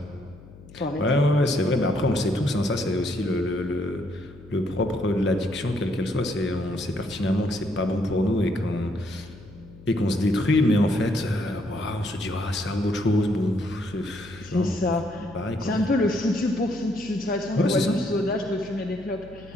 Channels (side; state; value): left; noise; hum, 20 dB below the sound